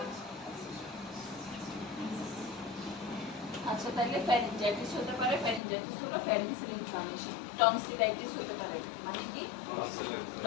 আচ্ছা, তাহলে ফ্যারিঞ্জাইটিস হতে পারে। ফ্যারিঞ্জাইটিস হলো ফ্যারিংসের ইনফ্লামেশন। টনসিলাইটিস হতে পারে, মানে কি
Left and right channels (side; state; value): right; drops out; at 5.6 s